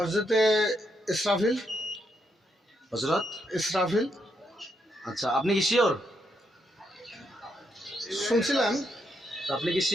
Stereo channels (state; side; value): normal; both; correlation 0.79